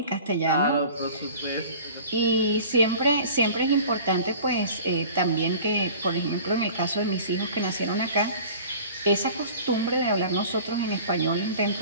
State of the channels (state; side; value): inverted; both; correlation -0.43